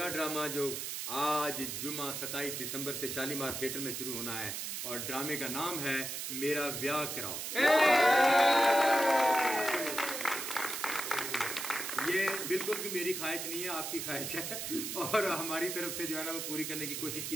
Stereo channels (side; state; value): right; noise; hiss, 4 dB below the sound